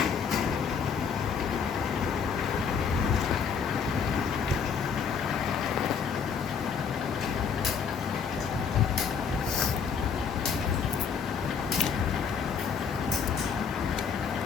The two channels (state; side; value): quieter; right; 6.5 dB